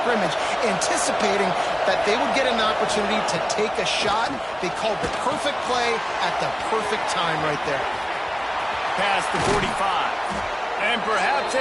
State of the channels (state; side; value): noise; right; hum, 26 dB below the sound